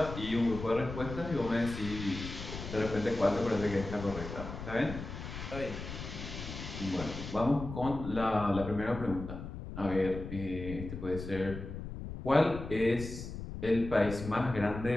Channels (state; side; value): noise; left; rumble, 9 dB below the sound